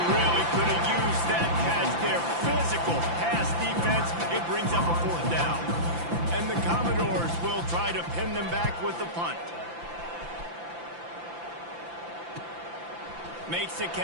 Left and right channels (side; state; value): left; late; 5.9 ms